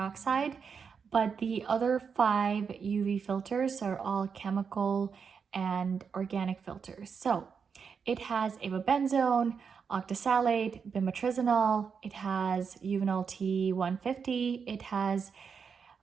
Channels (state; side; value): quieter; left; 6.2 dB